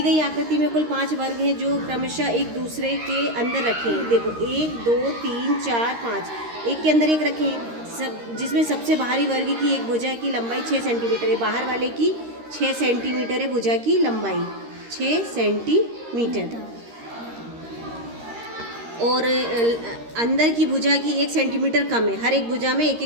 गई आकृति में कुल 5 वर्ग हैं जो क्रमशः एक दूसरे के अंदर रखें। देखो 1 2 3 4 5, एक के अंदर एक रखें, जिसमें सबसे बाहरी वर्ग की एक भुजा की लंबाई 6 सेंटीमीटर है, बाहर वाले की 6 सेंटीमीटर है भुजा की लंबाई 6 सेंटीमीटर, और अंदर की भुजा की 1 सेंटीमीटर कम है। हर एक भुजा में 1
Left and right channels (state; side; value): late; left; 13 ms